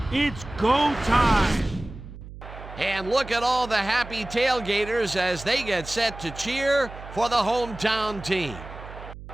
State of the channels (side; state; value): right; noise; hum, 14 dB below the sound